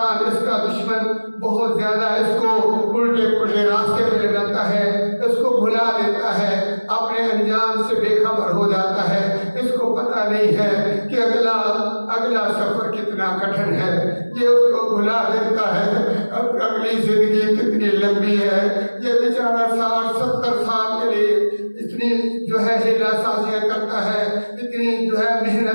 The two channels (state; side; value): inverted; both; correlation -1.00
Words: اس کا دشمن بہت زیادہ، اس کو الٹے پلٹے راستے پہ لگاتا ہے، اس کو بھلا دیتا ہے، اپنے انجام سے بے خبر ہو جاتا ہے، اس کو پتہ نہیں ہے کہ اگلا سفر کتنا کٹھن ہے، یہ اس کو بھلا دیتا ہے اب اگلی زندگی کتنی لمبی ہے، یہ بیچارہ 60-70 سال کے لیے اتنی جو ہے ہیلا سازیاں کرتا ہے، اتنی جو ہے